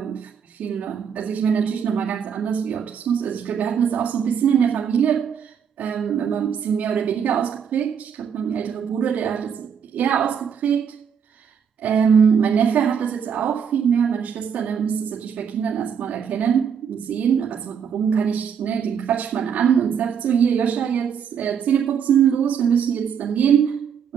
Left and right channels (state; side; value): quieter; left; 7.5 dB